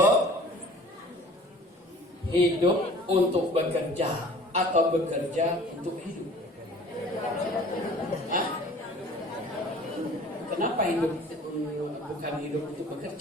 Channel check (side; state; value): both; normal; correlation 0.47